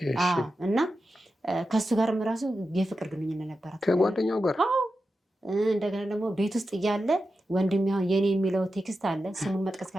እና ከሱ ጋርም ራሱ የፍቅር ግንኙነት ነበራት ከጓደኛው ጋር። እንደገና ደግሞ ቤት ውስጥ እያለ ወንድም ያው የኔ የሚለው ቴክስት አለ። ስሙን መጥቀስ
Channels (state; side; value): normal; both; correlation 0.90